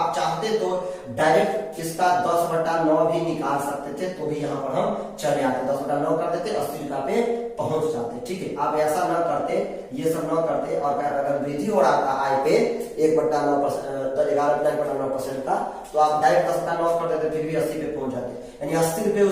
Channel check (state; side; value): identical; both; correlation 1.00